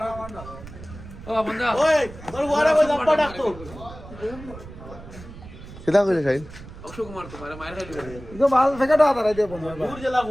কিতা কইলে খাইল অক্ষয় কুমার তো মায়ের খাইলি তো ভাল থেকে দাও তারাই দেব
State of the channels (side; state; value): right; noise; rumble, 15 dB below the sound